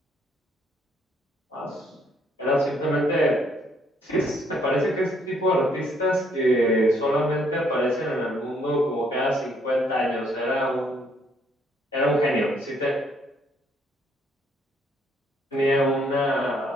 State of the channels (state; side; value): normal; both; correlation 0.68